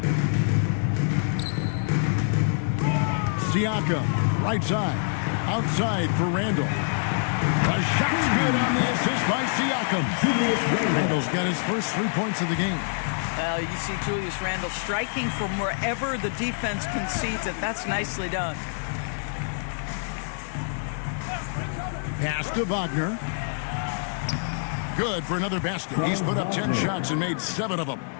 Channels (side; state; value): right; silent; digital silence